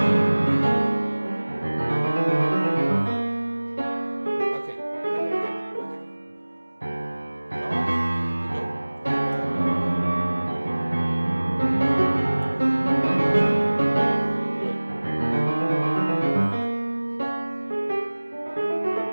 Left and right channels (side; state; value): both; inverted; correlation -1.00